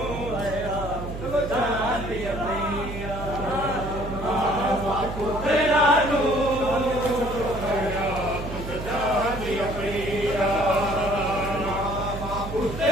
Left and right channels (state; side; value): noise; right; hum, 8 dB below the sound